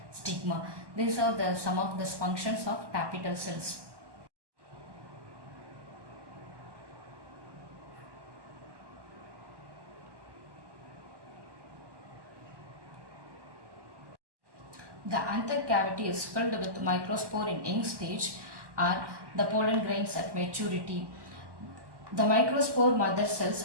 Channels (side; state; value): left; late; 1.1 ms